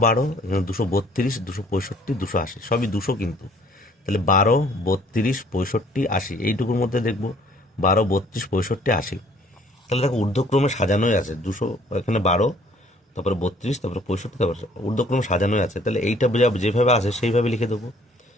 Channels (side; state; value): both; normal; correlation 0.58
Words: এখানে 232, 265, 280, সবই 200 কিন্তু। তাহলে 12, 32, 65, 80, এইটুকুর মধ্যে দেখবো 12, 32, 65, 80। তাহলে দেখো ঊর্ধ্বক্রমে সাজানোই আছে 200, এখানে 12, তারপরে 32, তারপরে 65, তারপরে ঊর্ধ্বক্রমে সাজানোই আছে। তাহলে এইটা যেভাবে আছে সেইভাবে লিখে দেবো।